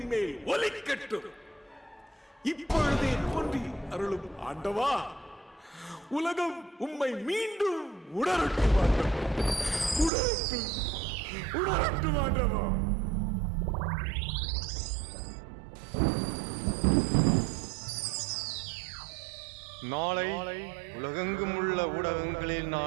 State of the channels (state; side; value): drops out; left; at 10.1 s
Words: மேல் ஒலிக்கட்டும். இப்பொழுதே தோன்றி அருளும் ஆண்டவா, உலகம் உம்மை மீண்டும் உணரட்டும் ஆண்டவா. நாளை உலகெங்கும் உள்ள ஊடகங்களில்